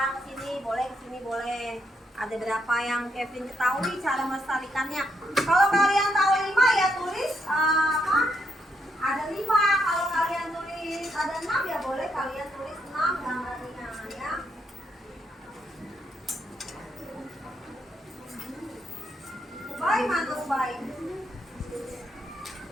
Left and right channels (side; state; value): both; normal; correlation 0.77